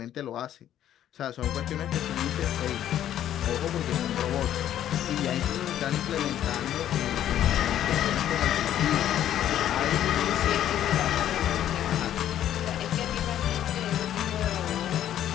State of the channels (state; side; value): quieter; right; 11.3 dB